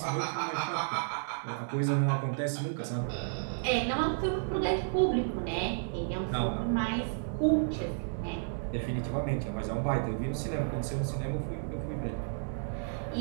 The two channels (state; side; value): silent; left; digital silence